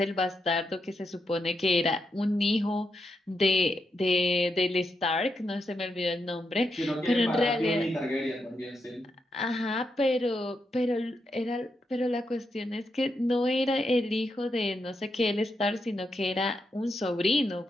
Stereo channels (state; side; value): normal; both; correlation 0.83